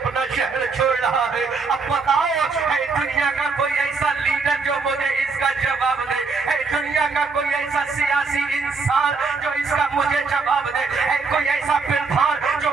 शहर छोड़ रहा है। अब बताओ, ऐ दुनिया का कोई ऐसा लीडर जो मुझे इसका जवाब दे, ऐ दुनिया का कोई ऐसा सियासी इंसान जो इसका मुझे जवाब दे, ऐ कोई ऐसा प्रधान जो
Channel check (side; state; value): left; quieter; 4.5 dB